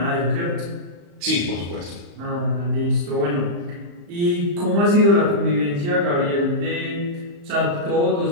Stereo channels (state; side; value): late; left; 35 ms